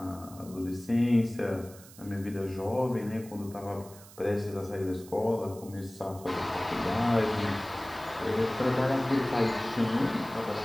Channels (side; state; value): right; noise; hiss, 20 dB below the sound